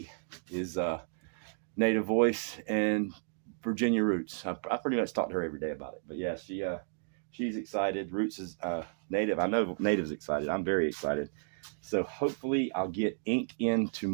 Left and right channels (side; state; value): left; silent; digital silence